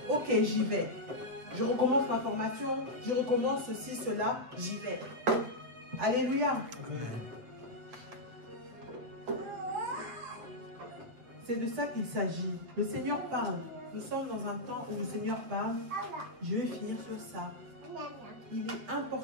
Ok, j'y vais. Je recommence ma formation, je recommence ceci, cela, j'y vais. Alléluia. Amen. C'est de ça qu'il s'agit. Le Seigneur parle. Nous sommes dans un temps où le Seigneur parle. Je vais finir sur ça. Il est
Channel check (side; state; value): left; late; 7.9 ms